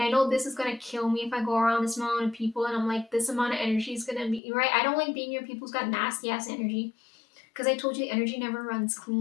I know this is gonna kill me if I go around this amount of people, and I'm like, this amount of energy is gonna be right. I don't like being near people who's got nasty ass energy, because I told you the energy never runs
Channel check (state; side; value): drops out; right; at 4.4 s